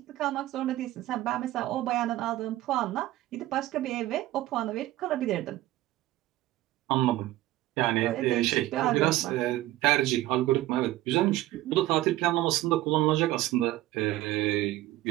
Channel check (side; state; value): left; quieter; 16.2 dB